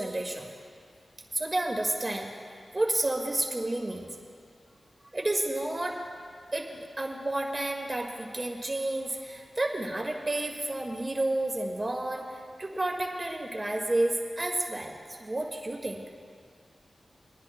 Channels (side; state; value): both; normal; correlation 0.98